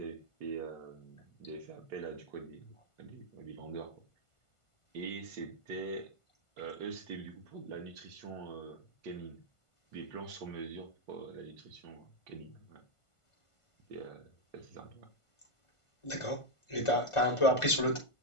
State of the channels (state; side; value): late; right; 1.5 ms